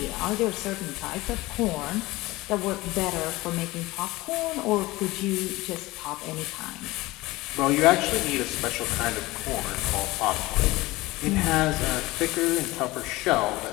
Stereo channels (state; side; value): quieter; right; 19.9 dB